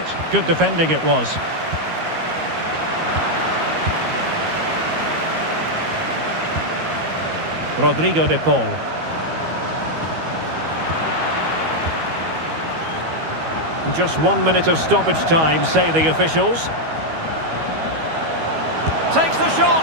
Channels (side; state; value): left; late; 13 ms